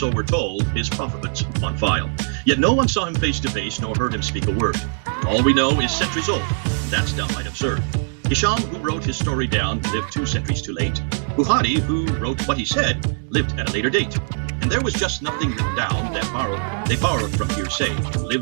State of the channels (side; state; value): left; silent; 64 dB below the other